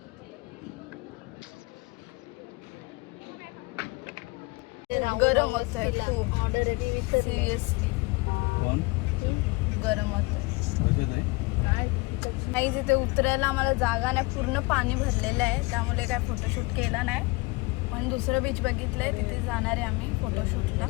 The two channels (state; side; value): quieter; right; 25.2 dB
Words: गरम होत आहे खूप. सिरियसली कोण गरम होत आहे. नाही तिथे उतरायला आम्हाला जागा नाही. पूर्ण पाणी भरलेलं आहे त्यामुळे काय फोटोशूट केला नाही. पण दुसरं बीच बघितलंय तिथे जाणार आहे आम्ही फोटोशूटला